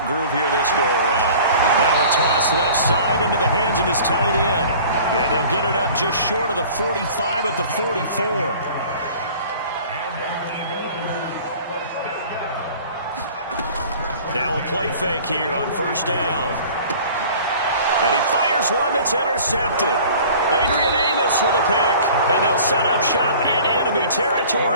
groove here this go-around. Now a toss left side into the hands of his tight end. And they'll get it up just short of the 45 at the 44. Now a play fake here on first down. And he fires one that's intercepted. Adrian Amos with a pick. And they'll set up shop in enemy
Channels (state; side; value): inverted; both; correlation -0.46